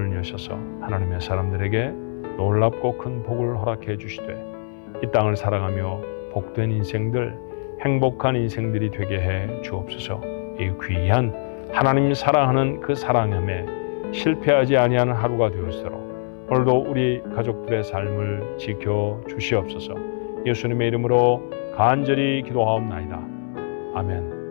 여셔서 하나님의 사람들에게 놀랍고 큰 복을 허락해 주시되 이 땅을 살아가며 복된 인생들, 행복한 인생들이 되게 해 주옵소서. 이 귀한 하나님 사랑하는 그 사랑함에 실패하지 아니하는 하루가 되었도록 오늘도 우리 가족들의 삶을 지켜 주시옵소서. 예수님의 이름으로 간절히 기도하옵나이다. 아멘.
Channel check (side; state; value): right; silent; 63 dB below the other